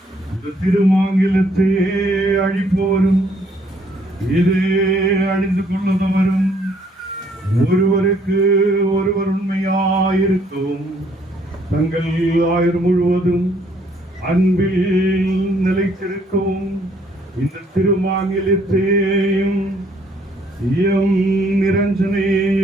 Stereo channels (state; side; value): normal; both; correlation 0.65